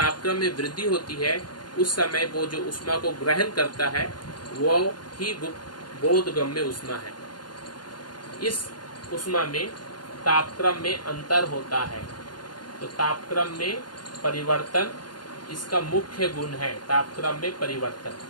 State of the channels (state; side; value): late; right; 0.71 ms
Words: में वृद्धि होती है उस समय वो जो उष्मा को ग्रहण करता है वो ही बोधगम्य उष्मा है। इस उष्मा में तापक्रम में अंतर होता है, तो तापक्रम में परिवर्तन इसका मुख्य गुण है, तापक्रम में परिवर्तन।